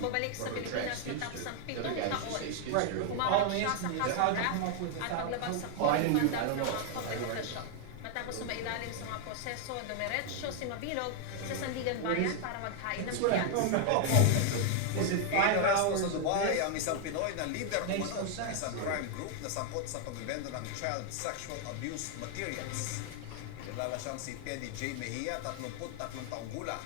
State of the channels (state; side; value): different; both; correlation 0.00